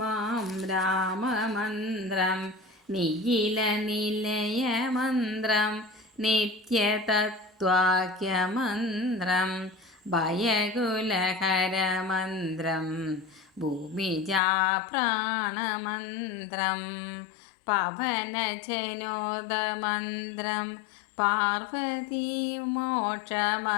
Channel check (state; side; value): drops out; right; at 14.4 s